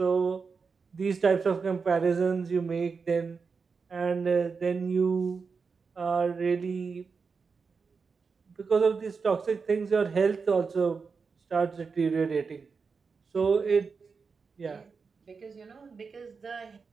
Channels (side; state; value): left; quieter; 5.1 dB